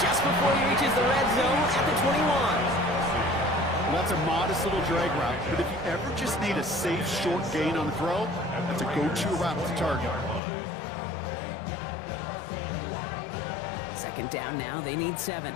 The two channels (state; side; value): drops out; right; at 10.4 s